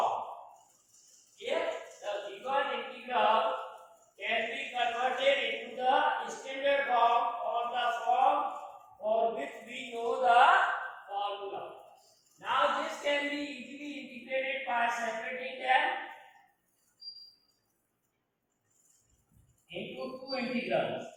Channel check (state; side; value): identical; both; correlation 1.00